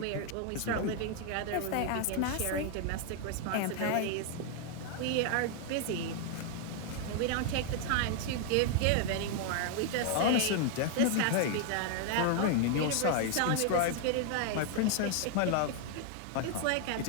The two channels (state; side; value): different; both; correlation 0.00